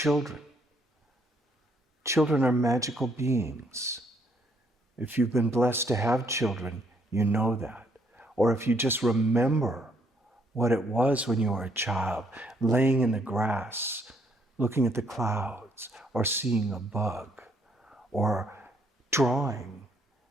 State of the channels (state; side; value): normal; both; correlation 0.69